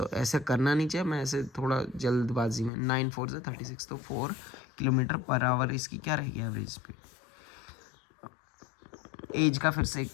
ऐसे करना नहीं चाहिए, मैं ऐसे थोड़ा जल्दबाजी में, 9 4 से 36, तो 4 किलोमीटर पर आवर इसकी क्या रहेगी एवरेज स्पीड। एज का फिर से एक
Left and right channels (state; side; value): drops out; right; at 2.7 s